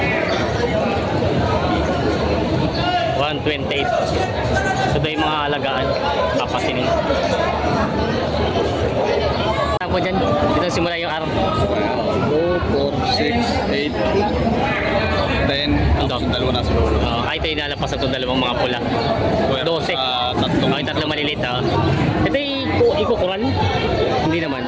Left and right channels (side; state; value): both; identical; correlation 1.00